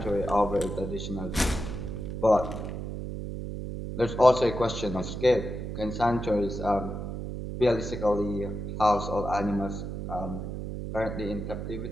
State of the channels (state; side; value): noise; right; hum, 6 dB below the sound